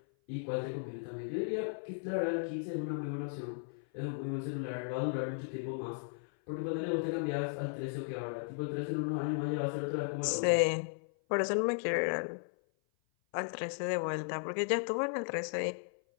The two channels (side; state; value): right; silent; 54 dB below the other